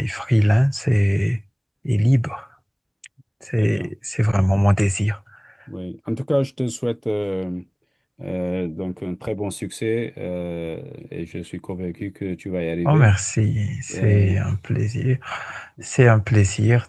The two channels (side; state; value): both; identical; correlation 1.00